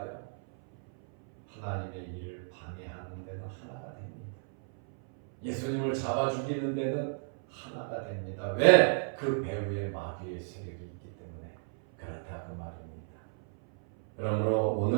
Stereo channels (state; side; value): silent; left; 56 dB below the other